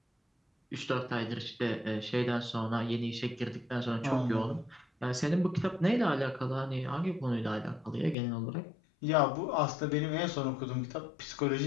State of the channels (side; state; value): right; drops out; at 8.2 s